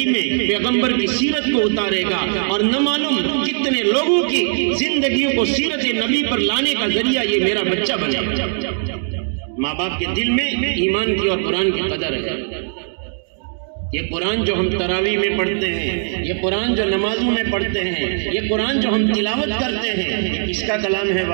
میں پیغمبر کی سیرت کو اتارے گا، اور نہ معلوم کتنے لوگوں کی زندگیوں کو سیرت نبی پر لانے کا ذریعہ یہ میرا بچہ بنے گا۔ ماں باپ کے دل میں ایمان کی اور قرآن کی قدر ہے۔ یہ قرآن جو ہم تراویح میں پڑھتے ہیں، یہ قرآن جو نمازوں میں پڑھتے ہیں، یہ قرآن جو ہم تلاوت کرتے ہیں، یہ کس کا کلام ہے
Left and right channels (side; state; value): left; silent; digital silence